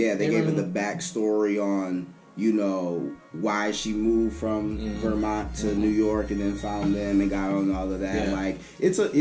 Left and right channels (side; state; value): both; identical; correlation 1.00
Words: they gave her the backstory on, you know, why she moved from Vermont to New York and then found them and got on all of that. Yeah. Like,